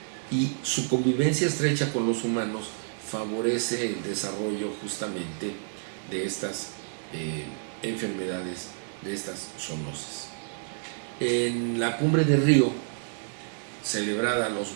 y su convivencia estrecha con los humanos favorece el desarrollo justamente de estas enfermedades, de estas zoonosis. En la cumbre de Río, celebrada a los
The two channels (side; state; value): left; silent; digital silence